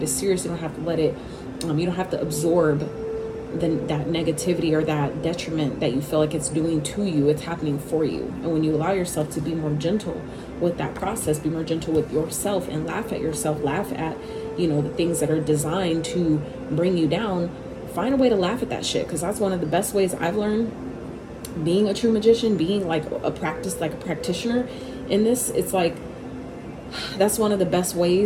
as serious. You don't have to let it, you don't have to absorb that negativity or that detriment that you feel like it's doing to you. It's happening for you. And when you allow yourself to be more gentle with that process, be more gentle with yourself and laugh at yourself, laugh at, you know, the things that are designed to bring you down, find a way to laugh at that shit. Because that's one of the best ways I've learned being a true magician, being like a practitioner in this. It's like, that's one of the best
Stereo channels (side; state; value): both; identical; correlation 1.00